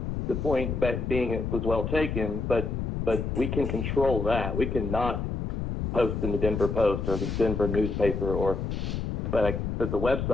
the point being it was well taken, but we can control that. We cannot post in the Denver Post or the Denver newspaper but the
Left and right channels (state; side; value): noise; left; rumble, 2 dB below the sound